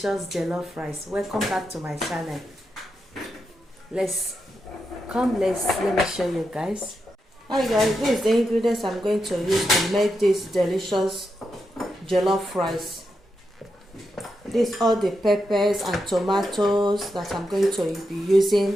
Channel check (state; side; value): normal; both; correlation 0.86